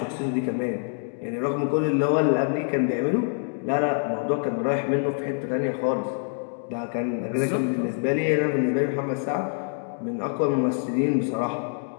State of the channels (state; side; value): silent; right; 60 dB below the other